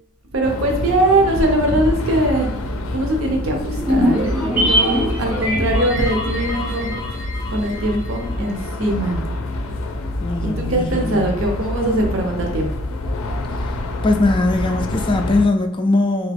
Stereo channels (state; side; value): normal; both; correlation 0.51